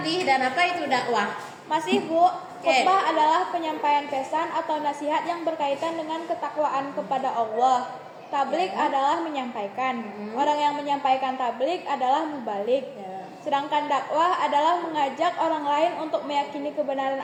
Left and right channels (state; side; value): identical; both; correlation 1.00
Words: dan apa itu dakwah? Masih, Bu. Khutbah adalah penyampaian pesan atau nasihat yang berkaitan dengan ketakwaan kepada Allah. Tablik adalah menyampaikan. Orang yang menyampaikan tablik adalah mubalik. Sedangkan dakwah adalah mengajak orang lain untuk meyakini kebenaran